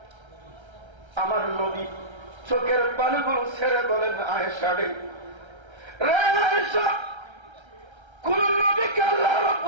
আমার নবী চোখের পানিগুলো ছেড়ে বলেন, আয়েশা রে আয়েশা, কোন নবীকে আল্লাহ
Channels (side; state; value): left; late; 1.3 ms